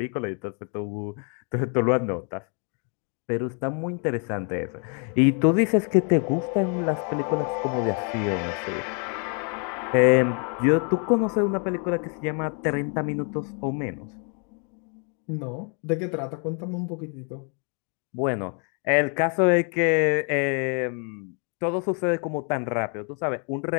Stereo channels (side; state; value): right; quieter; 39.4 dB